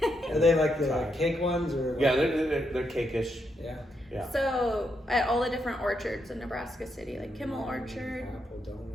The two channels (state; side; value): normal; both; correlation 0.80